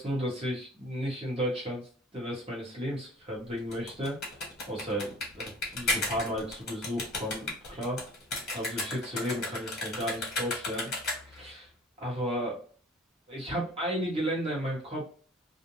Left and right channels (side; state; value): both; normal; correlation 0.47